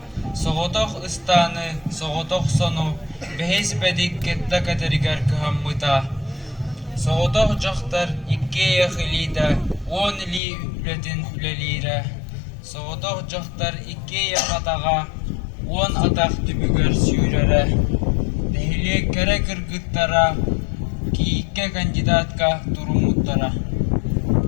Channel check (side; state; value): right; drops out; at 10.4 s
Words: соғотох ыстаны, соғотох сону, бехес бедик кетта катеригар кыхаммыта. Соғотох жоқтар икке яхылида, он ли үлетін үлелейра. Соғотох жоқтар икке яхатаға, он атақ түбігер сүйрері. Дәхіле кәрі кіргіттара, кейікке кандидатка турумуттара.